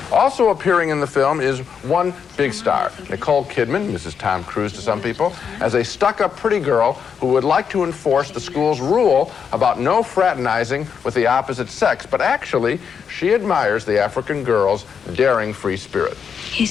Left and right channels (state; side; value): quieter; right; 6.8 dB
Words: Also appearing in the film is one big star, Nicole Kidman, Mrs. Tom Cruise to some people, as a stuck-up pretty girl who would like to enforce the school's rule about no fraternizing with the opposite sex, but actually, she admires the African girl's daring free spirit.